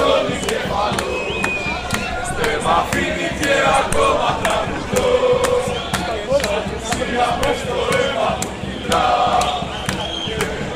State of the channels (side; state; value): both; identical; correlation 1.00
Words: εγκέφαλο, δεν μ' αφήνει και ακόμα τραγουδώ. Σιγά μες το αίμα μου κυλά και